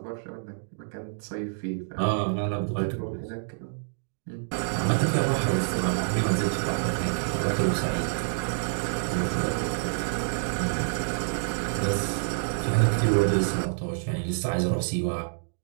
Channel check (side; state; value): left; silent; digital silence